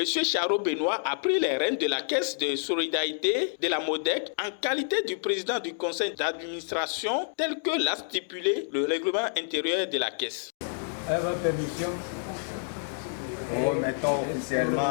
Charo Benoît a pris les rênes de la caisse de solidarité de la MODEC en qualité du président du conseil d'administration tel que l'a stipulé le règlement intérieur de la caisse. Avec votre permission, nous remettons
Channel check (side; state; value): right; silent; digital silence